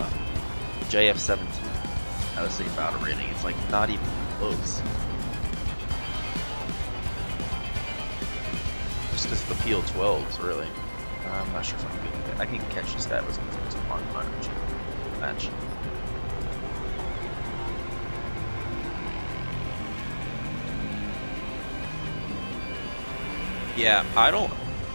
JF-17 at the same battle rating. It's like not even close. Just because the PL-12s really. I'm not sure if I'm good. I can catch the stat was on match. Yeah,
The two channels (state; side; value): inverted; both; correlation -1.00